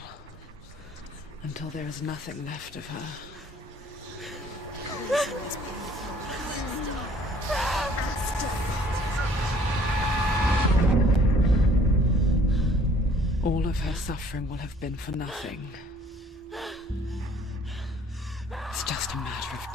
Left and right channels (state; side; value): normal; both; correlation 0.57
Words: until there is nothing left of her. All of her suffering will have been for nothing. It's just a matter of